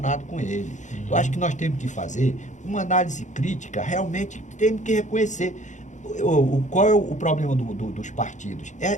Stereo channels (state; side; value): late; right; 0.35 ms